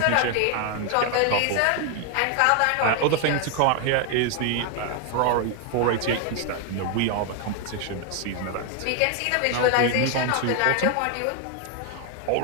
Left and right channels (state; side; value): different; both; correlation 0.01